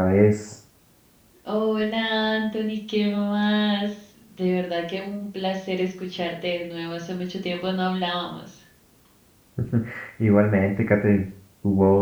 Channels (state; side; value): identical; both; correlation 1.00